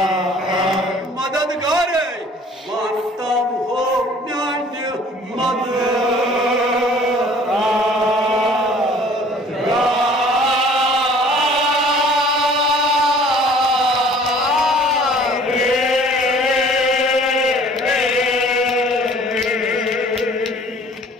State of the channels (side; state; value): both; normal; correlation 0.52